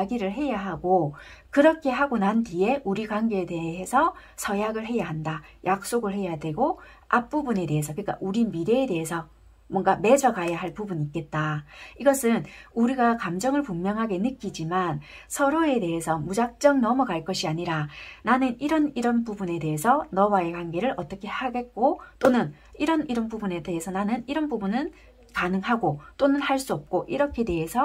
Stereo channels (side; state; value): both; identical; correlation 1.00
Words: 해야 하고 그렇게 하고 난 뒤에 우리 관계에 대해서 서약을 해야 한다. 약속을 해야 되고 앞부분에 대해서 그러니까 우리 미래에 대해서 뭔가 맺어가야 할 부분이 있겠다. 이것은 우리가 감정을 분명하게 느끼지만 서로에 대해서 무작정 넘어갈 것이 아니라 나는 이런 부분에 대해서 너와의 관계를 어떻게 하겠고 또는 이런 부분에 대해서 나는 이런 부분은 가능하고 또는 할 수 없고 이렇게